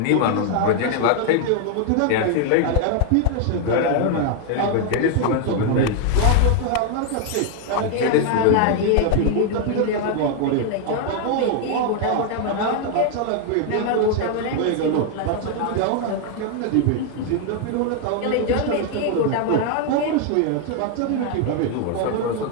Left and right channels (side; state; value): both; different; correlation 0.00